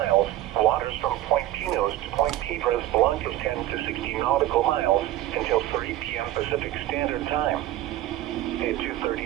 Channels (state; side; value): quieter; left; 14.0 dB